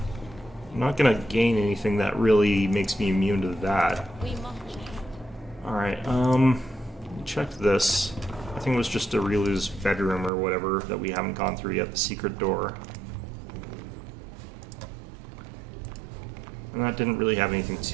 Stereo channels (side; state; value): left; drops out; at 10.3 s